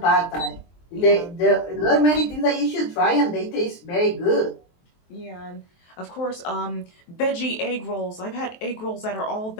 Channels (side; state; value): right; late; 23 ms